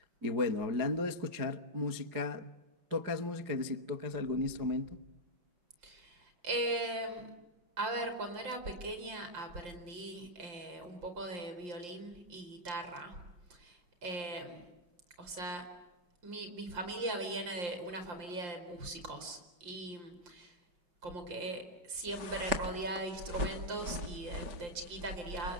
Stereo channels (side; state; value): left; late; 5.7 ms